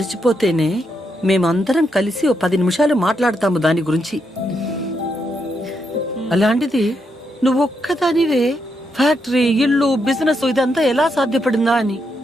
మేమందరం కలిసి 10 నిమిషాలు మాట్లాడతాము దాని గురించి. అలాంటిది నువ్వు ఒక్కదానివే ఫ్యాక్టరీ, ఇల్లు, బిజినెస్ ఇదంతా ఎలా సాధ్యపడిందా అని.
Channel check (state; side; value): normal; both; correlation 0.81